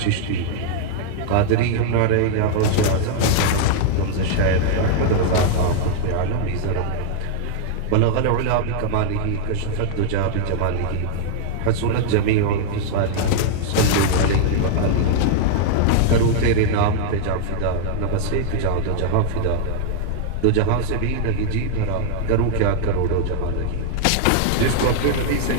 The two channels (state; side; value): different; both; correlation -0.01